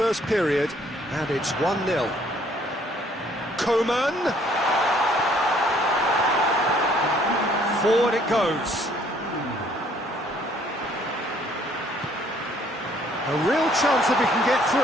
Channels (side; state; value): both; normal; correlation 0.62